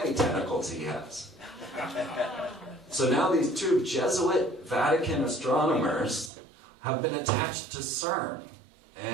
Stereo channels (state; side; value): drops out; left; at 6.3 s